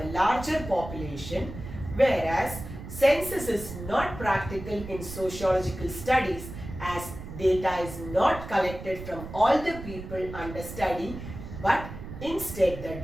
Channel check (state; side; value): noise; right; rumble, 11 dB below the sound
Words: larger population, whereas census is not practical in sociological studies as data is not collected from all the people under study, but instead the